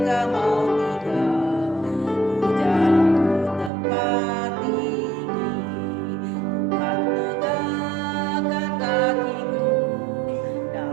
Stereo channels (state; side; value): drops out; left; at 3.7 s